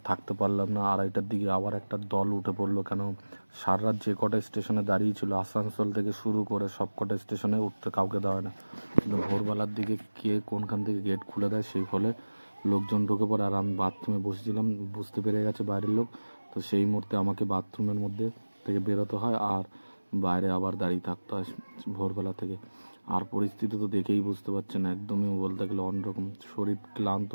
থাকতে পারলাম না। 2:30টার দিকে আবার একটা দল উঠে পড়লো। কেন সারা রাত যে কটা স্টেশনে দাঁড়িয়েছিল, আসানসোল থেকে শুরু করে সব কটা স্টেশনে উঠতে কাউকে দেওয়া না, কিন্তু ভোরবেলার দিকে কে কোনখান থেকে গেট খুলে দেয়, সেই ফলে লোকজন ঢুকে পড়ে। আর আমি বাথরুমে বসেছিলাম, বুঝতে পেরে গেছে বাইরের লোক। তো সেই মুহূর্তে আমাকে বাথরুমের মধ্যে থেকে বেরোতে হয় আর বাইরে আবার দাঁড়িয়ে থাকতে হয় ভোরবেলা থেকে। আর পরিস্থিতি তো দেখেই বুঝতে পারছেন, একদমই বলতে গেলে অন্যরকম। শরীর ক্লান্ত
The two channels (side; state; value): both; inverted; correlation -1.00